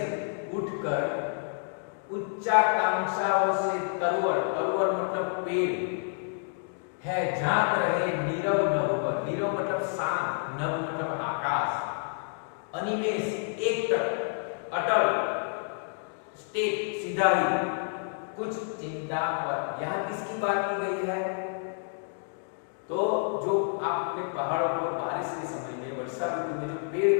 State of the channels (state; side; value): silent; right; 58 dB below the other